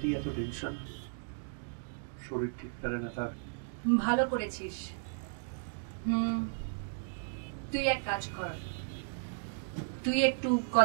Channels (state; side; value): silent; left; digital silence